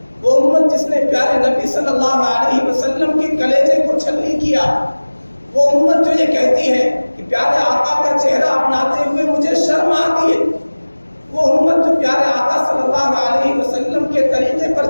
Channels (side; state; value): both; inverted; correlation -1.00